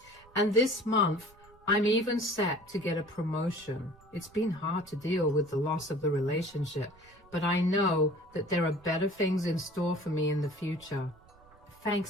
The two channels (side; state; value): right; noise; rumble, 26 dB below the sound